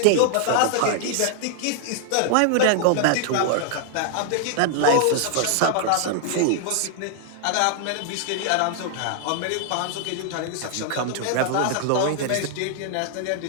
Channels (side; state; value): both; different; correlation 0.00